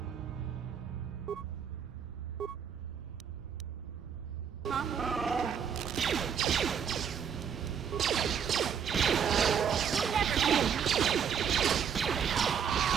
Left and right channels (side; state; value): left; quieter; 7.6 dB